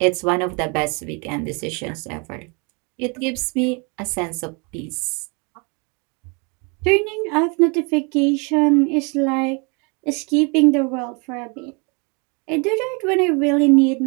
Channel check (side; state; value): left; quieter; 32.4 dB